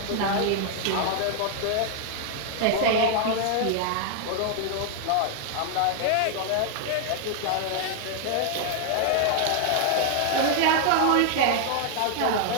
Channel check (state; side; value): different; both; correlation 0.00